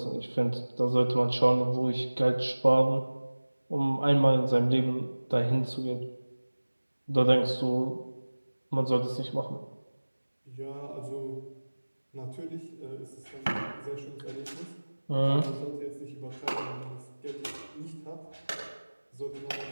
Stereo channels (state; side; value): inverted; both; correlation -1.00